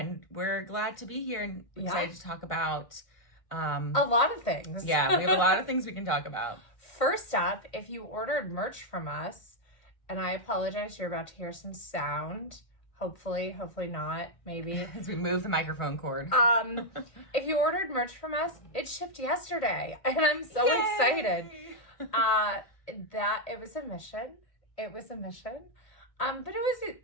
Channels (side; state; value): right; late; 1.8 ms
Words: we're glad to be here and excited to talk about... a lot of things. Yeah, we have a lot of things we can talk about. First up, if you ordered merch from us, and I apologize, you're about to hear some sound. Hopefully not, maybe. As we move the microphone cord. If you ordered merch from us, it shipped yesterday. And I'm so excited. That it was a mission. But